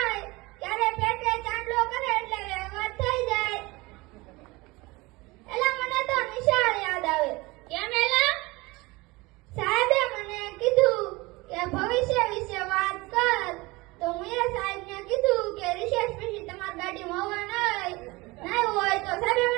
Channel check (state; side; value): quieter; left; 22.8 dB